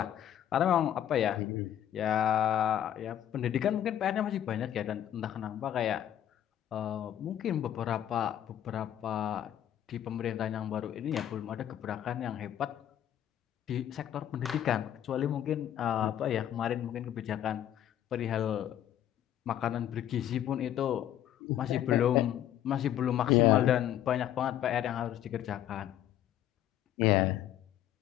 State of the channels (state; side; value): quieter; right; 11.1 dB